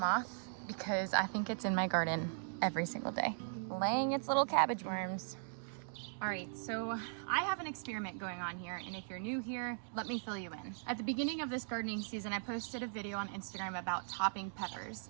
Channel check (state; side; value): silent; left; digital silence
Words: because I think it's in my garden every single day, laying its little cabbage worms. All right, so I have an experiment going on here, and if you're new here, let me fill you in. At the beginning of this gardening season, I posted a video on Instagram about topping peppers.